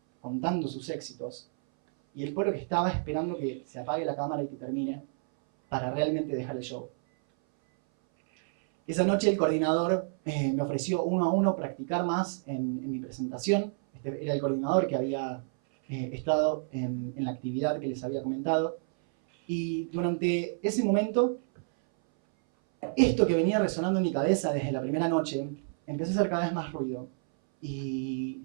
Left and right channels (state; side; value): silent; left; 58 dB below the other